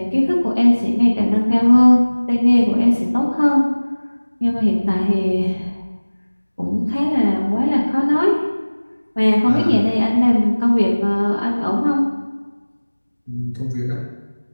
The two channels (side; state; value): both; inverted; correlation -1.00